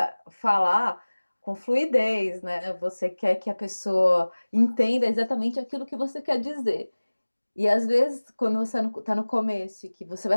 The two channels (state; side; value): inverted; both; correlation -1.00